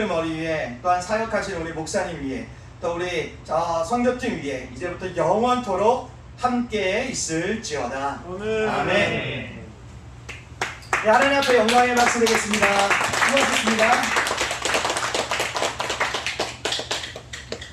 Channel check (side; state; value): both; identical; correlation 1.00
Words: 머리 위에 또한 사역하신 우리 목사님 위에 또 우리 선교팀 위에 이제부터 영원토록 함께 있을지어다. 아멘. 아멘. 네, 하나님 앞에 영광의 박수 드리겠습니다. 수고하셨습니다.